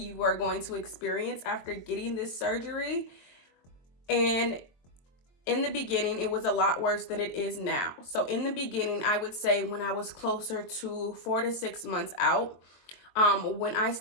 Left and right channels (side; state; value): right; late; 23 ms